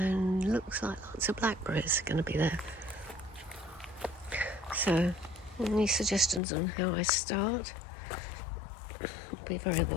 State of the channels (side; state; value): right; drops out; at 6.4 s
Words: looks like lots of blackberries are going to be there. So any suggestions on how I start will be very